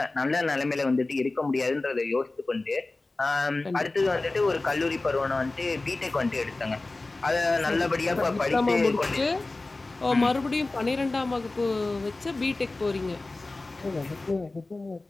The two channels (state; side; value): quieter; right; 3.2 dB